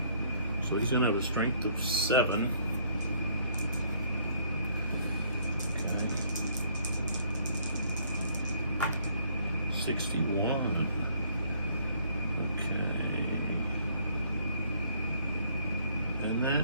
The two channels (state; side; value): inverted; both; correlation -0.63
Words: So he's going to have a strength of 7. 61. Okay. And